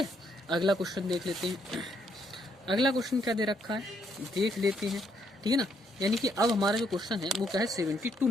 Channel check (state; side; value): normal; both; correlation 0.73